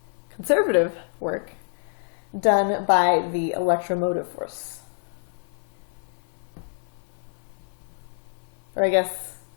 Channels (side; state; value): right; silent; 56 dB below the other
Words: conservative work, done by the electromotive force. Or I guess,